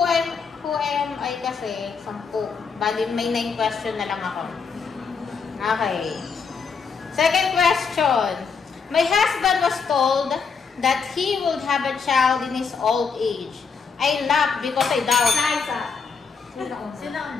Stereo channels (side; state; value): right; quieter; 5.5 dB